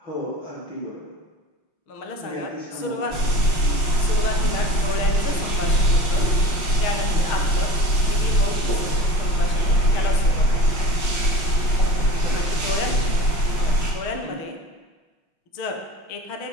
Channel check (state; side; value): late; right; 5.6 ms